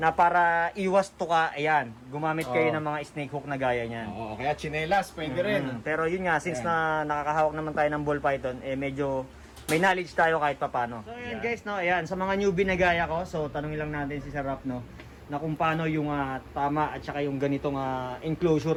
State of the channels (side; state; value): both; identical; correlation 1.00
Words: para iwas to ka, ayan, gumamit kayo ng mga snake hook na gaya niyan. Oo, kaya chinelas pwede rin. Pero yun nga, since na nakakahawak naman tayo ng ball python, medyo may knowledge tayo kahit papano. So ayan guys, no, ayan, sa mga newbie na gaya ko, so tanungin lang natin si Sir Rap, no, na kung paano yung tama at saka yung ganitong